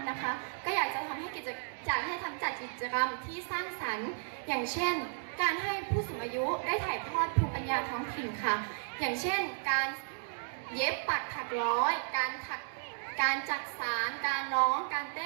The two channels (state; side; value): silent; left; digital silence